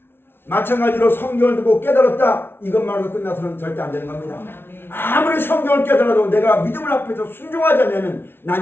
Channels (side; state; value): right; late; 0.11 ms